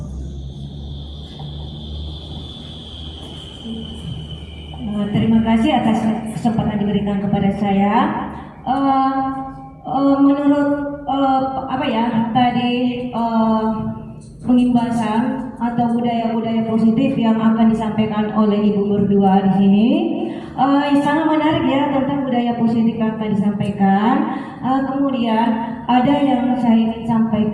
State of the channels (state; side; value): identical; both; correlation 1.00